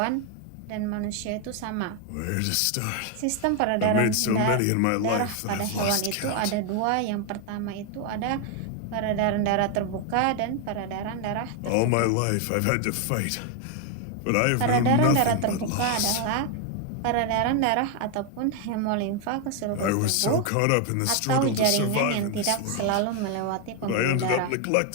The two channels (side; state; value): both; different; correlation 0.01